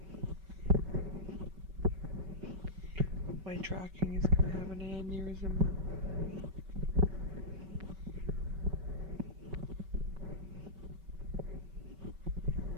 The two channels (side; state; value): left; late; 5.3 ms